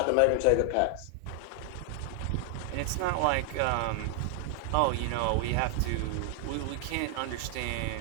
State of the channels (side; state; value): both; different; correlation 0.00